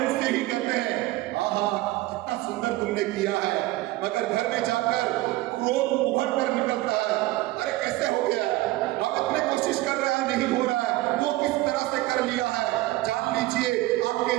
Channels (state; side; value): quieter; left; 18.0 dB